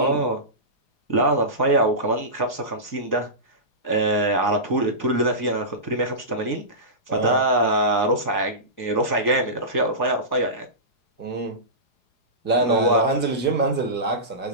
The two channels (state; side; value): late; right; 4.8 ms